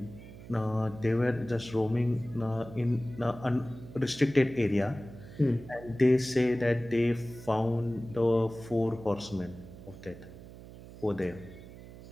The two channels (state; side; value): noise; right; hum, 16 dB below the sound